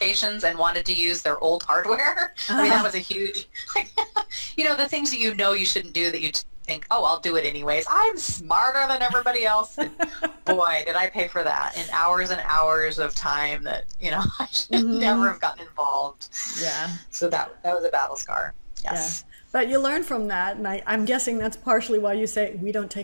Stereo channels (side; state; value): both; inverted; correlation -1.00